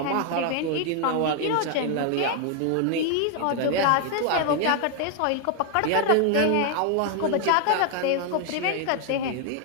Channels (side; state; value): both; different; correlation 0.01